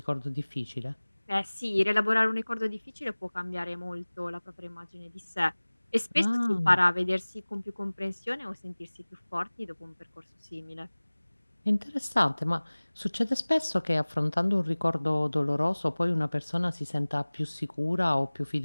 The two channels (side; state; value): both; inverted; correlation -1.00